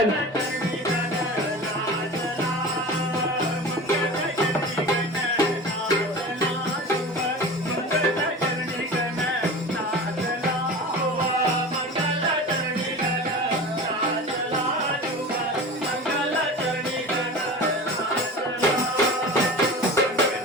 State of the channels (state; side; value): normal; both; correlation 0.33